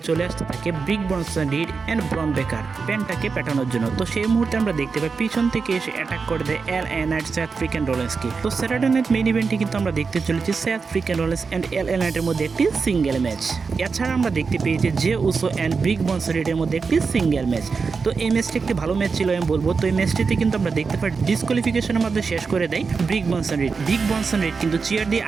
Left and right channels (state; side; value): quieter; left; 4.9 dB